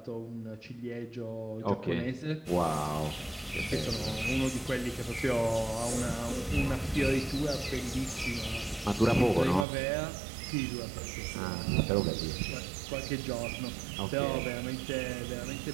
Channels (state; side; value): drops out; left; at 9.7 s